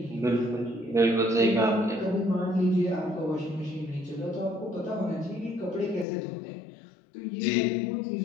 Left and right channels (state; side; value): drops out; right; at 6.1 s